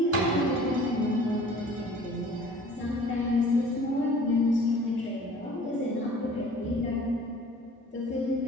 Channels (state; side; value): normal; both; correlation 0.48